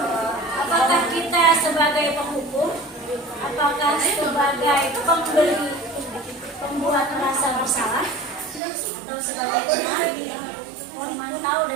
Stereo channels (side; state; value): left; drops out; at 8.6 s